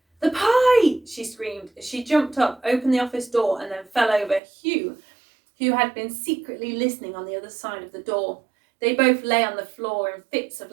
"The pie!" she screamed as she jumped up, opened the office door, and then fell over Hugh, who had been secretly listening on the other side of the door. They both lay on the floor in fits of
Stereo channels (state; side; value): drops out; left; at 4.4 s